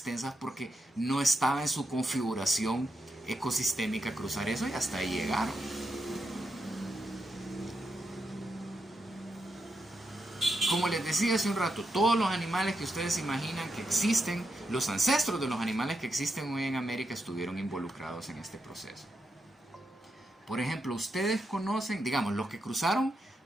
porque no estaba en su configuración ecosistémica cruzar eso y hasta ahí llegaron. Como les decía hace un rato, todos los animales que ustedes imaginan que existen, los ancestros de los animales que existen hoy en América estuvieron involucrados en este proceso. Por ejemplo, ustedes conocen, digamos, los que cruzaron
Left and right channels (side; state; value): both; normal; correlation 0.85